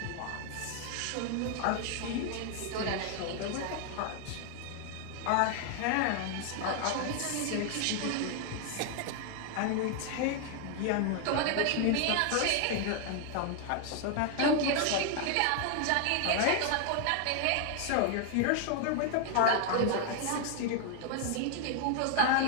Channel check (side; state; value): both; different; correlation 0.00